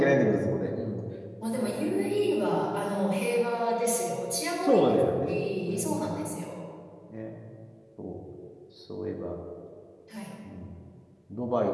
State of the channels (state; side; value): identical; both; correlation 1.00